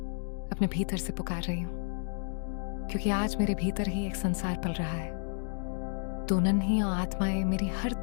अपने भीतर से पुकार रही हूं, क्योंकि आज मेरे भीतर ही एक संसार पल रहा है। दो नन्ही आत्माएं मेरी हर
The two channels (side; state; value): right; silent; digital silence